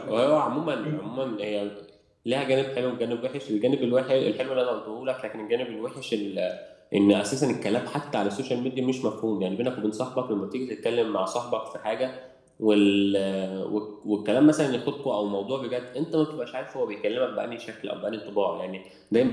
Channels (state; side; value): identical; both; correlation 1.00